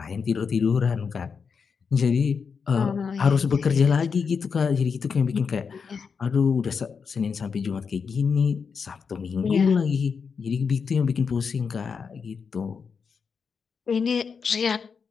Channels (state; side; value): quieter; right; 5.8 dB